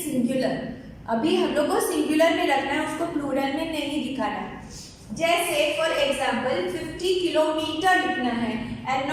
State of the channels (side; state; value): both; identical; correlation 1.00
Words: singular. अभी हम लोग को सिंगुलर में रखना है, उसको प्लूरल में नहीं दिखाना है। जैसे फॉर एग्जाम्पल 50 किलोमीटर लिखना है एंड